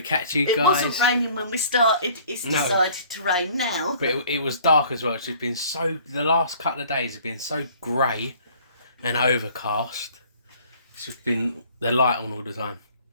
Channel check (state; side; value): inverted; both; correlation -0.54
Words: catch you guys. It wasn't raining when we started, it's decided to rain now. But it was dark as well. It's just been the last couple of days have been so grey and overcast. It's just been the light on all the time.